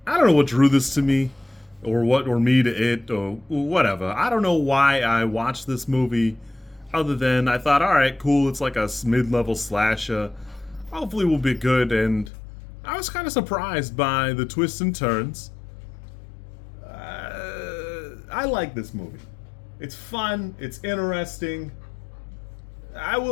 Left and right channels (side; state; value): right; drops out; at 12.3 s